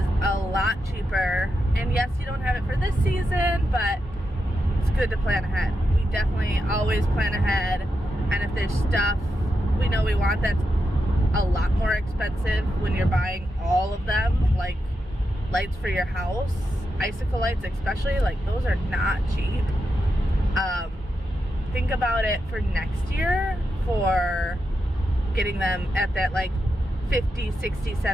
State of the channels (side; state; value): both; normal; correlation 0.86